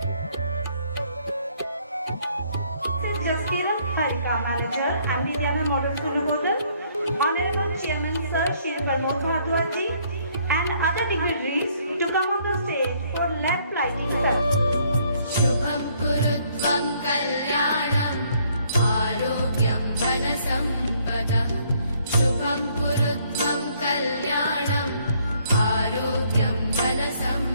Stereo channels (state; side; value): inverted; both; correlation -0.66